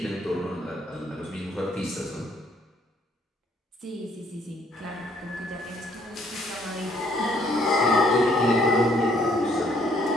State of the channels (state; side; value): normal; both; correlation 0.66